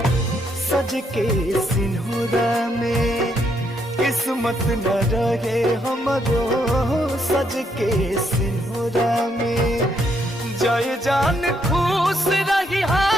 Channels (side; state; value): both; normal; correlation 0.75